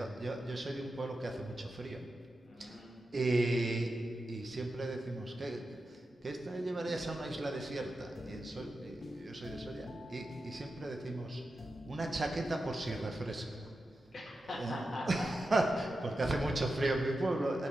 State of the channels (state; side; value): normal; both; correlation 0.90